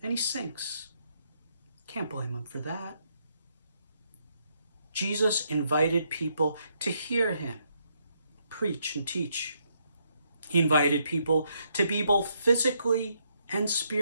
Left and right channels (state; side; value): inverted; both; correlation -0.75